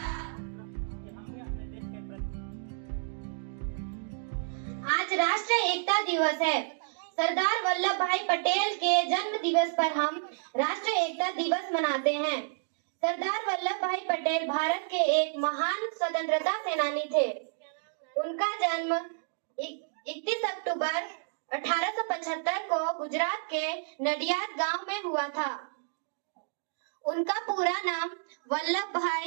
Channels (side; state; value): left; silent; digital silence